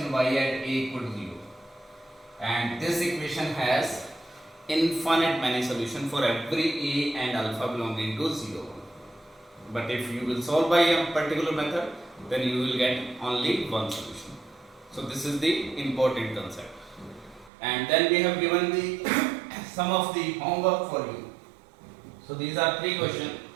y at a equal to 0. And this equation has infinite many solution for every a and alpha belonging to 0. But if you will solve by a particular method, then you will get only one solution. So this is the important concept. And then we have given the some of the homework for you. So these are three questions.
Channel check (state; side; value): drops out; left; at 17.5 s